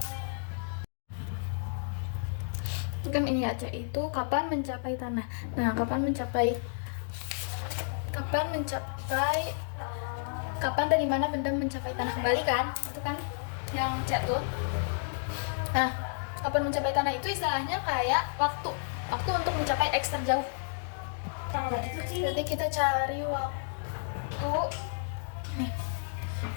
Kan ini aja itu kapan mencapai tanah. Nah, kapan dari mana benda mencapai tanah kembali kan? Itu kan yang C tuh. Nah, kapan mencapai tanah itu istilahnya kayak waktu untuk mencapai X terjauh. Jadi kita cari waktu. Nih,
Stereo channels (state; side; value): silent; right; digital silence